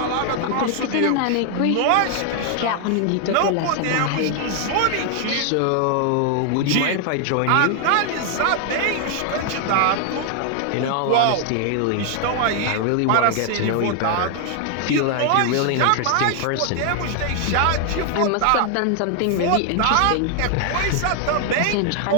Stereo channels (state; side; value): different; both; correlation 0.00